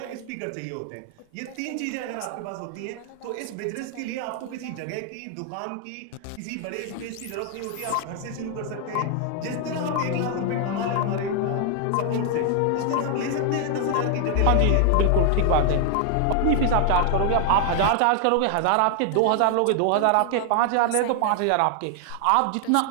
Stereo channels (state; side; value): different; both; correlation 0.00